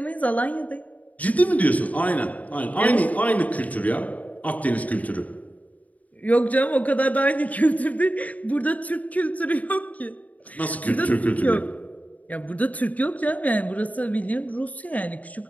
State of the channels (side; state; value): right; late; 0.072 ms